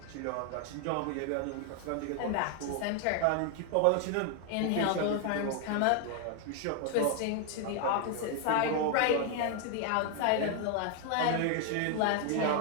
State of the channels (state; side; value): different; both; correlation 0.00